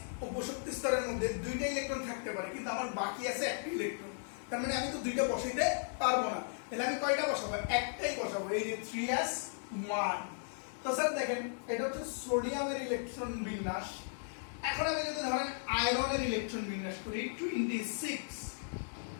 উপশক্তি স্তরের মধ্যে দুইটা ইলেকট্রন থাকতে পারে, কিন্তু আমার বাকি আছে একটা ইলেকট্রন। তার মানে আমি তো দুইটা বসাইতে পারবো না, তাহলে আমি কয়টা বসাবো, একটাই বসাবো, এই যে 3s1। তো স্যার দেখেন এটা হচ্ছে সোডিয়ামের ইলেকট্রন বিন্যাস। এখন আমি যদি ধরেন আয়রনের ইলেকট্রন বিন্যাস করি, 26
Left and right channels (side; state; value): right; silent; digital silence